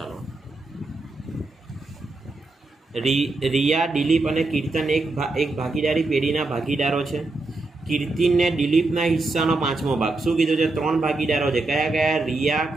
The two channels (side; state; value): left; quieter; 3.2 dB